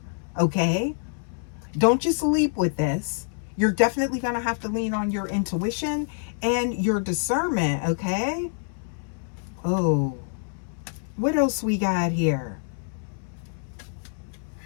Okay? Don't just leap with this. You're definitely going to have to lean on your intuition and your discernment. Okay? Oh. What else we got here?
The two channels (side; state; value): right; silent; 61 dB below the other